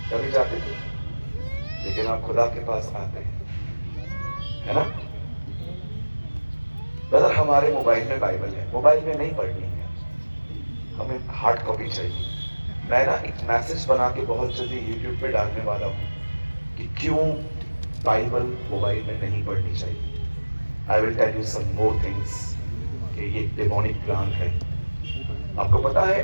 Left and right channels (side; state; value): both; inverted; correlation -1.00